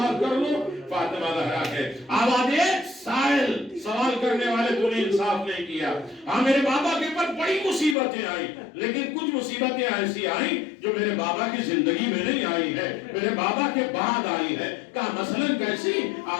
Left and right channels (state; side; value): drops out; right; at 8.0 s